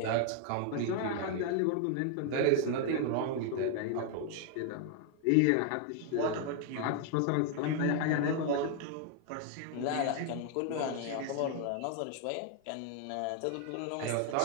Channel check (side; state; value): both; different; correlation 0.00